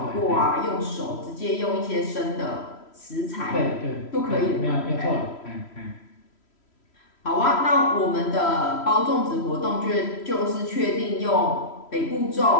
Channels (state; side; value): late; right; 3.1 ms